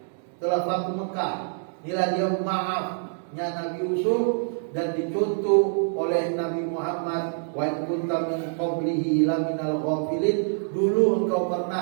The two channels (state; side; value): silent; left; digital silence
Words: Setelah Fathu Mekah, inilah dia maafnya Nabi Yusuf, dan dicontoh kunta min qablihi laminal ghafilin, dulu engkau